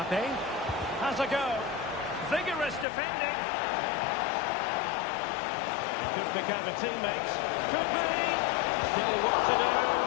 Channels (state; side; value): drops out; right; at 2.9 s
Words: has a go. Vigorous defending. Could pick out a teammate. Could be. Still what to do.